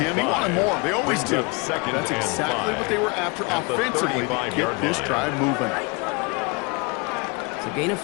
He wanted more. They always do. That's exactly what they were after offensively to get this drive moving. So gain of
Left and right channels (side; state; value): right; quieter; 28.9 dB